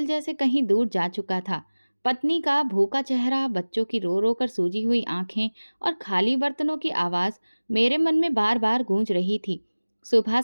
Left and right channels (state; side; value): inverted; both; correlation -1.00